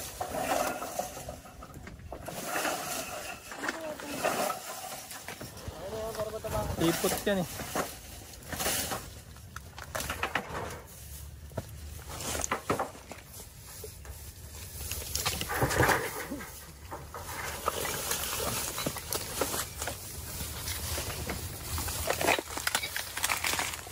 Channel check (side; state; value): both; identical; correlation 1.00